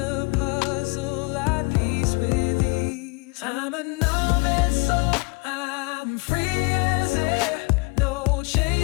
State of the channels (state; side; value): quieter; right; 29.1 dB